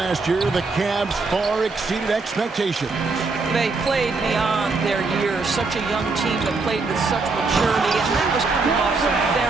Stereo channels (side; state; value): left; quieter; 4.0 dB